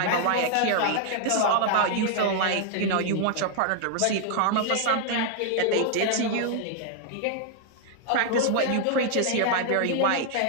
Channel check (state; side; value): different; both; correlation -0.01